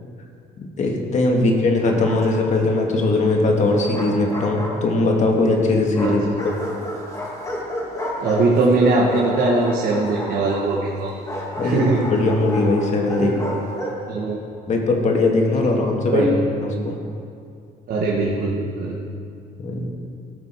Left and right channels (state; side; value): normal; both; correlation 0.59